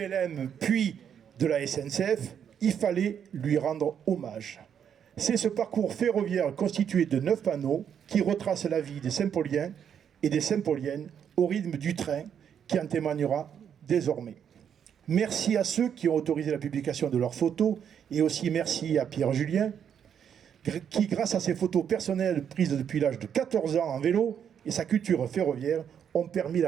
puis de la SNCF, il fallait lui rendre hommage. C'est ce parcours ferroviaire constitué de 9 panneaux qui retrace la vie des Saint-Pauliens et des Saint-Pauliennes au rythme du train qui en témoignera désormais. Merci à ceux qui ont autorisé la publication de leurs photos et aussi merci à Pierre Julien qui, grâce à ses photos personnelles prises depuis l'âge de 14 ans en vélo et sa culture ferroviaire, ont permis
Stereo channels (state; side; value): quieter; left; 8.3 dB